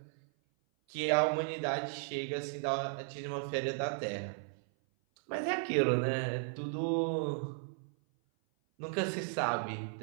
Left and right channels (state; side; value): silent; left; 54 dB below the other